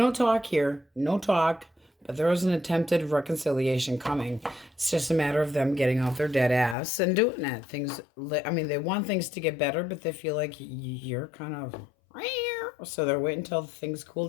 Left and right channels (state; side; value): drops out; right; at 6.8 s